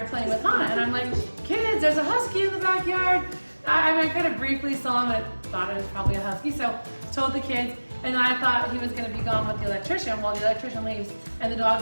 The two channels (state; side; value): inverted; both; correlation -1.00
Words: playing with Hana, and I'm like, kids, there's a husky in the backyard. I kind of briefly saw him and thought it was probably a husky, so told the kids, and I thought he was going to be gone with the electrician. Well, the electrician leaves and the